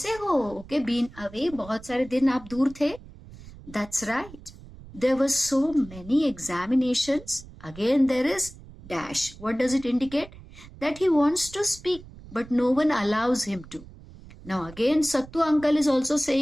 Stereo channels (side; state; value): right; noise; rumble, 18 dB below the sound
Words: हो? Okay, been away, बहुत सारे दिन आप दूर थे. That's right. There were so many examinations. Again, there is dash. What does it indicate? That he wants to speak, but no one allows him to. Now again, Sattu uncle is also